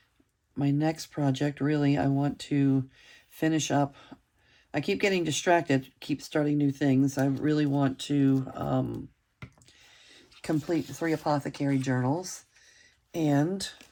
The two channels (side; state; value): both; identical; correlation 1.00